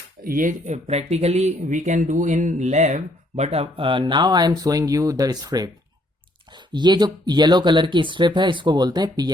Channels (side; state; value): both; normal; correlation 0.67